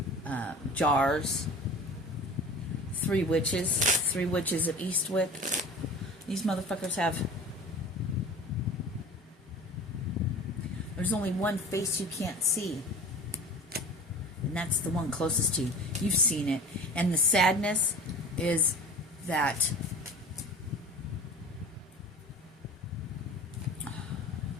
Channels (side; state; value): both; normal; correlation 0.39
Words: jars. 3 witches of Eastwick. These motherfuckers have... There's only one face you can't see. And that's the one closest to you. You've seen it. And the sadness is that...